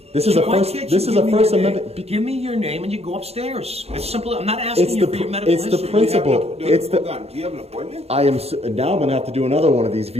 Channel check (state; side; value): late; left; 0.30 ms